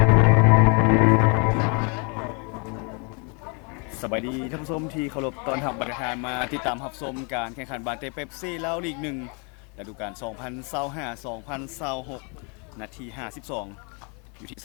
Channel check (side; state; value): right; quieter; 35.2 dB